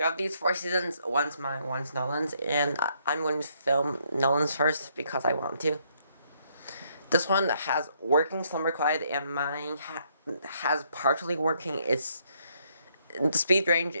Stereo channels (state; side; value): inverted; both; correlation -0.71